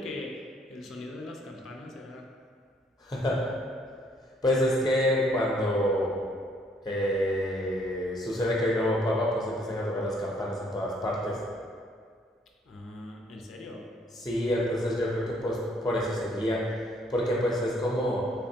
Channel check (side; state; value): both; normal; correlation 0.66